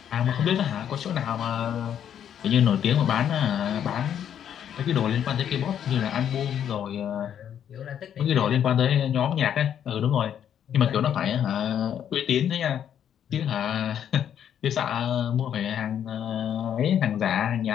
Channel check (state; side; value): quieter; right; 9.4 dB